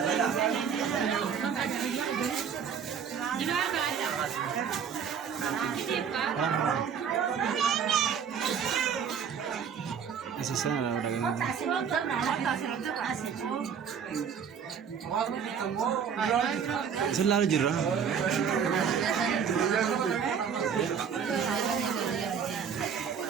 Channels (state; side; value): quieter; left; 7.2 dB